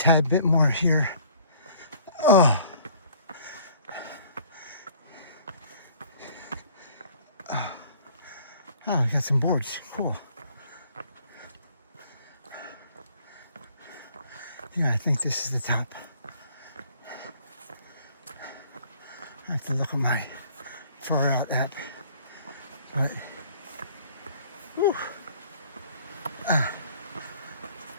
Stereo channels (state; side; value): inverted; both; correlation -0.55